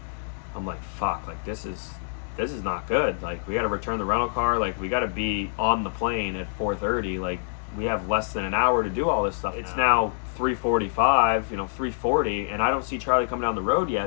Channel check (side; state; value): right; silent; digital silence